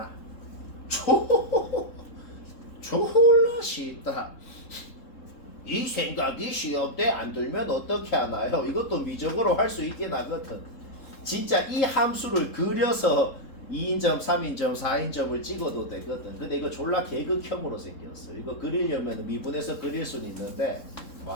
졸라 쉽다. 이 생각이 시험때 안 들면 어떻게 하나요? 이것도 미적으로 할 수 있긴 하거든. 진짜 이 함수를 그려서 2인점, 3인점, 4인점을 찍어도 되거든. 근데 이거 졸라 계극형으로 생겼어. 이거 그리려면 미분해서 그릴 수는 있는데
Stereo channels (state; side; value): late; right; 3.7 ms